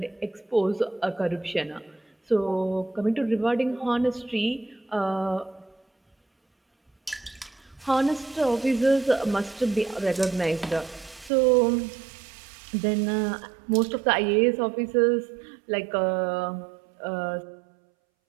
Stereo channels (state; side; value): drops out; left; at 11.3 s